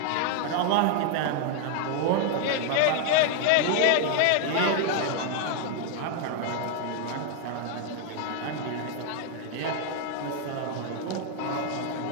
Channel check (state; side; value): different; both; correlation 0.00